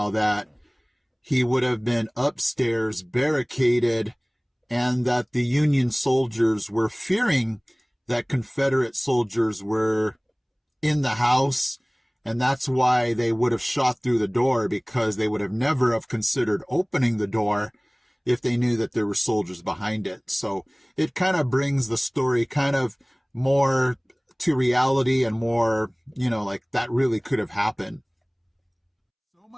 that he would have been upstairs barricaded and that the Union soldiers were fearing that Confederate soldiers were in the house. And that's why they would have shot through the door, because they would have never have considered opening the door if they knew that there were soldiers behind it. So it kind of brings the story kind of more to reality and more, like that really could have happened. So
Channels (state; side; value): identical; both; correlation 1.00